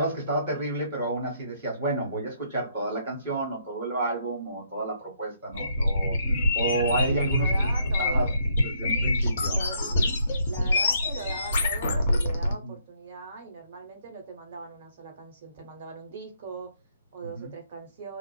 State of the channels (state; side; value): inverted; both; correlation -0.70